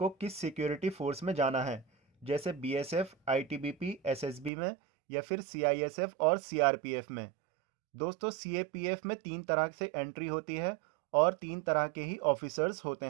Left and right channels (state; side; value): drops out; left; at 4.5 s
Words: किस सिक्योरिटी फोर्स में जाना है, जैसे बीएसएफ, आईटीबीपी, एसएसबी में या फिर सीआईएसएफ और सीआरपीएफ में। दोस्तों, सीएपीएफ में 3 तरह से एंट्री होती है और 3 तरह के ही ऑफिसर्स होते